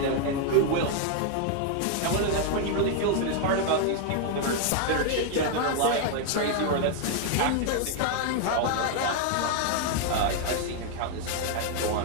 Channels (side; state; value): both; different; correlation 0.00